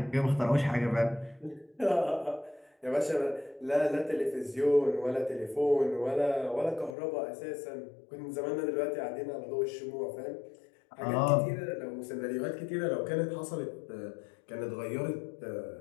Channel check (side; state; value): right; drops out; at 7.0 s